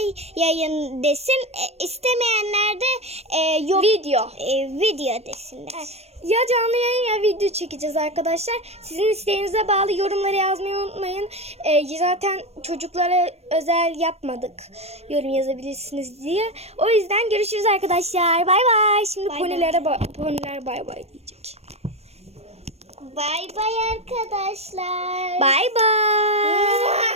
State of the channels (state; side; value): late; left; 0.31 ms